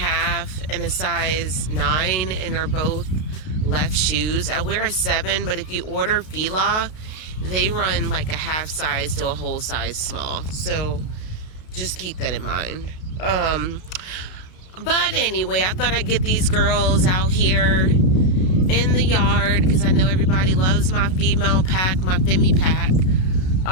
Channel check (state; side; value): late; right; 32 ms